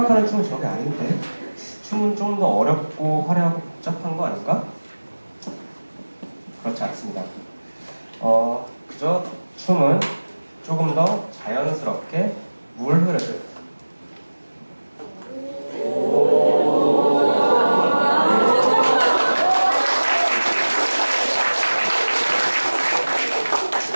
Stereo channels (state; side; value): inverted; both; correlation -1.00